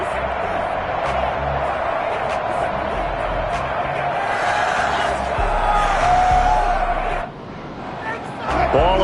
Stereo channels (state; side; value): identical; both; correlation 1.00